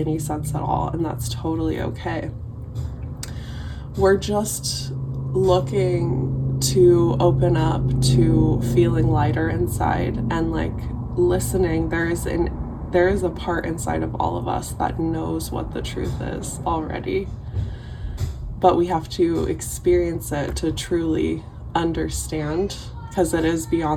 sense at all, and that's totally okay. We're just looking to open up to feeling lighter inside and like listening. There is a part inside of all of us that knows what the truth is already, but we have to experience it to truly understand, because it is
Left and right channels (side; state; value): both; identical; correlation 1.00